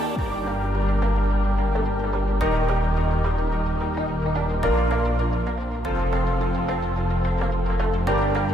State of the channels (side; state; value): both; normal; correlation 0.76